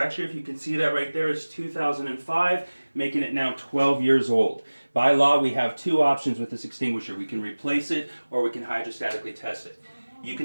if you can see that right there, is 2005, making it now 12 years old. By law, we have two options with this extinguisher. We can replace it or we can hydrostatically test it. You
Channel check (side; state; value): both; inverted; correlation -1.00